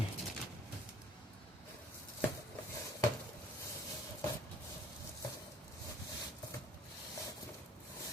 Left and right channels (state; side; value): normal; both; correlation 0.56